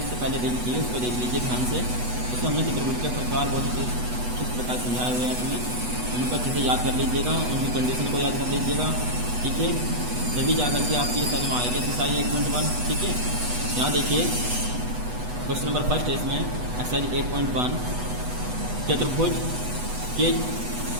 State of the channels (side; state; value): left; late; 8.1 ms